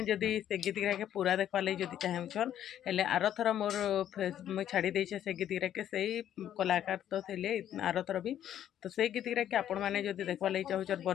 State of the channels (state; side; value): quieter; right; 10.8 dB